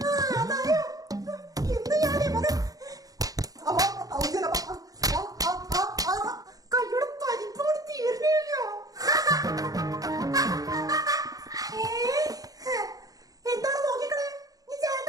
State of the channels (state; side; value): late; left; 0.18 ms